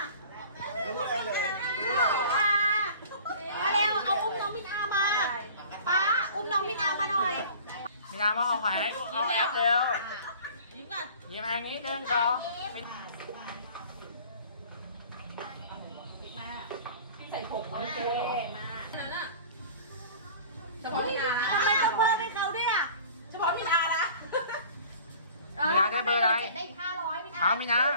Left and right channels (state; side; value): inverted; both; correlation -0.45